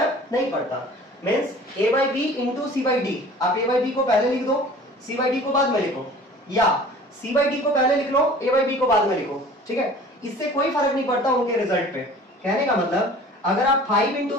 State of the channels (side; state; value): both; normal; correlation 0.45